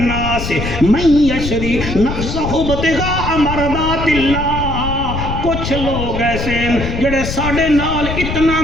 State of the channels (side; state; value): left; noise; rumble, 5 dB below the sound